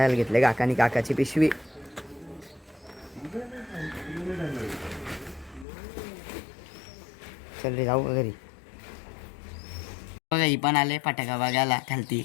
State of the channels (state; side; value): drops out; right; at 5.7 s